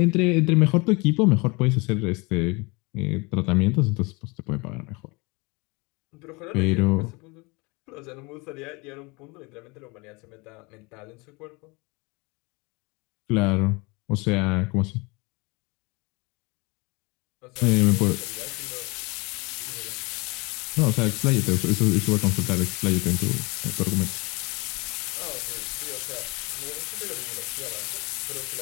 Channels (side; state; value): right; quieter; 27.2 dB